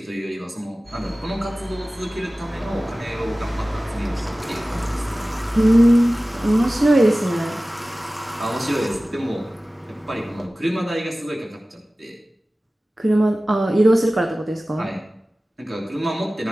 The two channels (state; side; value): normal; both; correlation 0.97